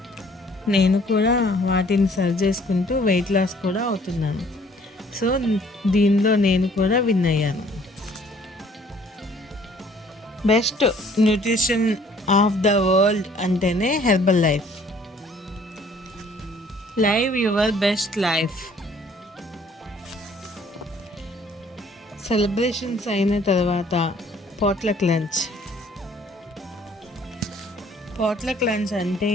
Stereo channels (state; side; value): normal; both; correlation 0.58